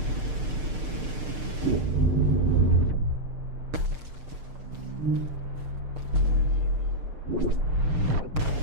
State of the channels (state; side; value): late; left; 6.6 ms